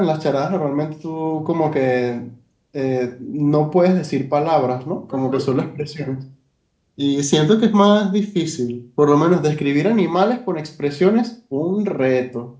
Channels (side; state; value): both; identical; correlation 1.00